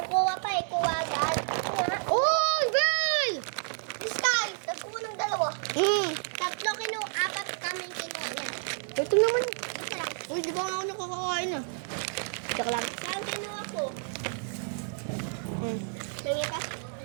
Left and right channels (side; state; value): left; silent; 58 dB below the other